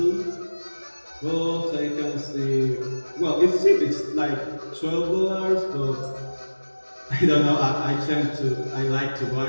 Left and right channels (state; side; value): inverted; both; correlation -1.00